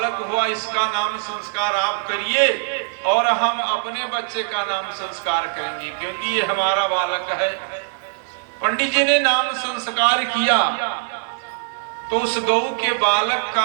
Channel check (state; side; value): silent; left; digital silence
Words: हुआ इसका नाम संस्कार आप करिए और हम अपने बच्चे का नाम संस्कार करेंगे, क्योंकि ये हमारा बालक है। पंडित जी ने नाम संस्कार किया तो उस गऊ के बालक